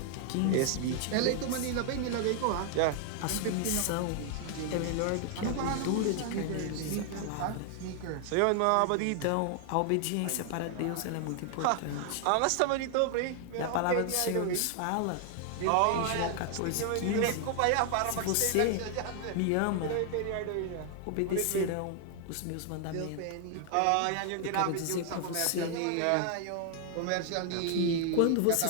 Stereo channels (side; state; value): both; different; correlation 0.00